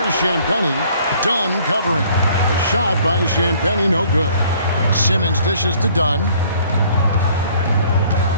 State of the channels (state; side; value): inverted; both; correlation -0.58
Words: Champagnie. Dunn covering. A shot by Champagnie, no good. Simmons dishes to Dunn.